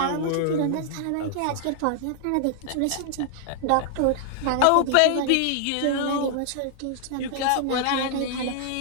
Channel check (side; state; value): both; different; correlation 0.00